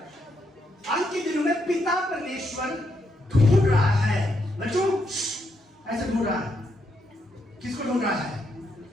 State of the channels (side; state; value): both; normal; correlation 0.79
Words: अंत के दिनों में पिता परमेश्वर ढूंढ रहा है। बच्चों ऐसे ढूंढ रहा है। किसको ढूंढ रहा है?